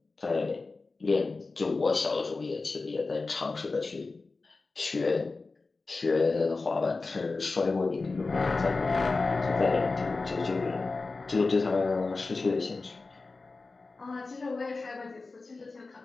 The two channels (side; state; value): right; quieter; 3.8 dB